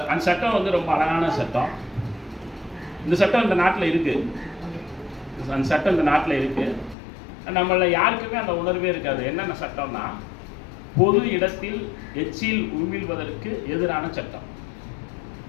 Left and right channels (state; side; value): drops out; right; at 7.0 s